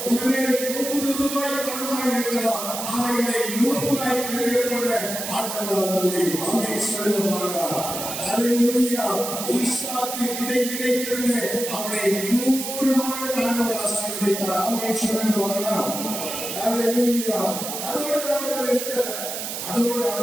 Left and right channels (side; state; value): right; noise; hiss, 5 dB below the sound